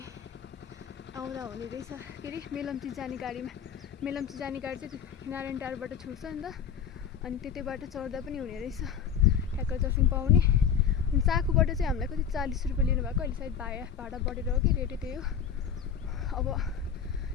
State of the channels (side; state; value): right; quieter; 7.5 dB